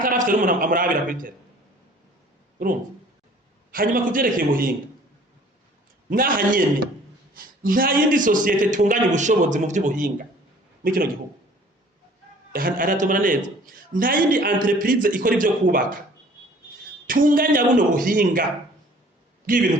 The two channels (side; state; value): both; normal; correlation 0.53